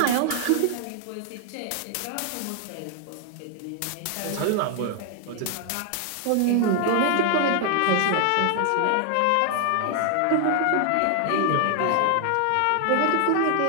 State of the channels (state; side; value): different; both; correlation 0.00